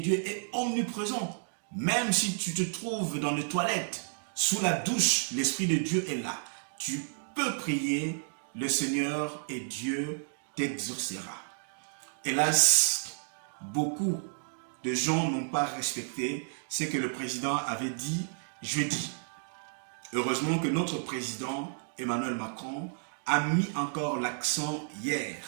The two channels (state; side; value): silent; left; digital silence